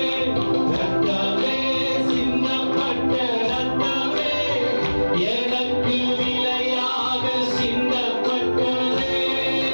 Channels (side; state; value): both; inverted; correlation -1.00